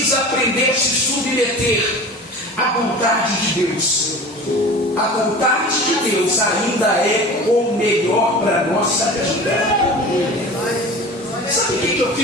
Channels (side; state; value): both; normal; correlation 0.37